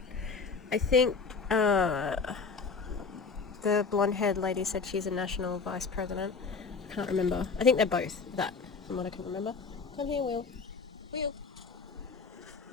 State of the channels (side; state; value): right; quieter; 4.9 dB